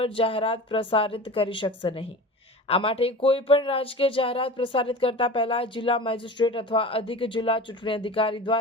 જાહેરાત પ્રસારિત કરી શકશે નહીં। આ માટે કોઈ પણ રાજકીય જાહેરાત પ્રસારિત કરતા પહેલા જિલ્લા મેજિસ્ટ્રેટ અથવા અધિક જિલ્લા ચૂંટણી અધિકારી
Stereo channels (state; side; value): normal; both; correlation 0.34